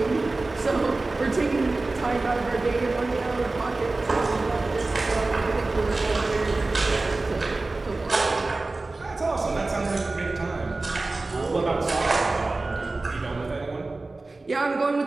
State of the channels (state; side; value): quieter; left; 3.3 dB